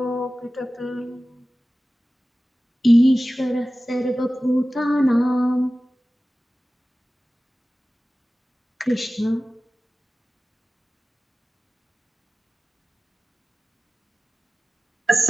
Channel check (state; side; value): normal; both; correlation 0.96